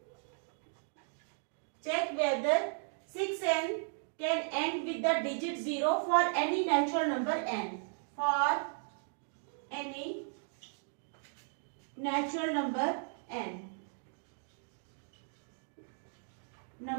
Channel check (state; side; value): silent; left; digital silence